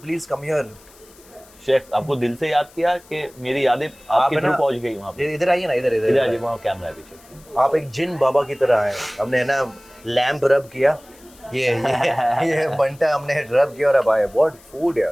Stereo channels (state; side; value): noise; left; hiss, 26 dB below the sound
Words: please come here. Chef आपको दिल से याद किया कि मेरी यादें आपके है थ्रू ना, पहुंच गई वहाँ पे। इधर आइए ना, इधर इधर इधर आ जाइए, वहाँ कैमरा है पीछे। आप एक जिन बाबा की तरह आए, हमने ना लैंप रब किया, ये बंटा हमने रब किया और अब आए, व्हाट फूड